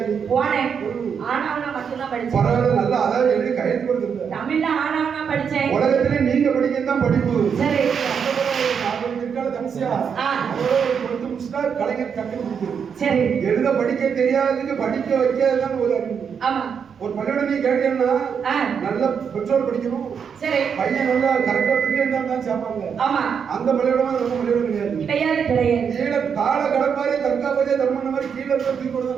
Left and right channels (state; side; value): quieter; left; 6.9 dB